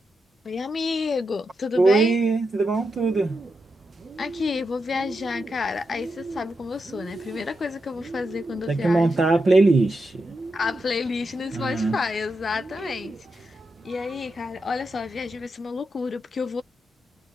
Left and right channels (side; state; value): both; normal; correlation 0.86